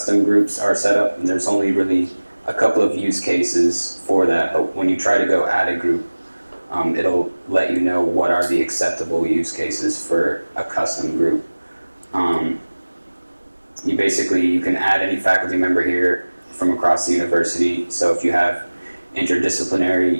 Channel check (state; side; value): inverted; both; correlation -1.00